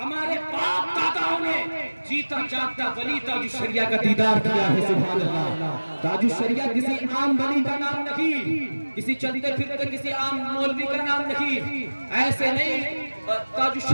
باپ داداؤں نے جیتا جاگتا ولی تاج الشریعہ کا دیدار کیا ہے۔ سبحان اللہ۔ تاج الشریعہ کسی عام ولی کا نام نہیں، کسی چلتے پھرتے کسی عام مولوی کا نام نہیں، ایسے نہیں۔ تاج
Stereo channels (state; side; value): inverted; both; correlation -1.00